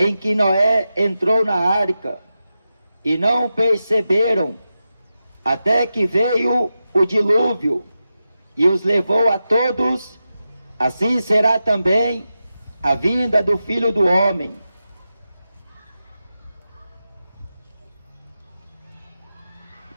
que Noé entrou na arca, e não perceberam, até que veio o dilúvio e os levou a todos, assim será também a vinda do Filho do Homem.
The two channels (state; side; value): inverted; both; correlation -0.91